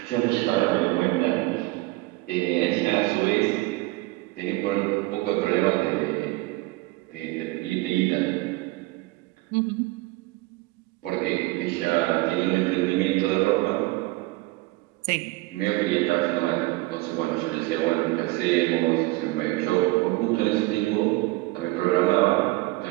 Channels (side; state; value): left; quieter; 21.1 dB